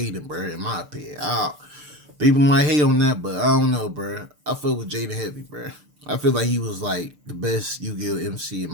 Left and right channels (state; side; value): late; left; 6.7 ms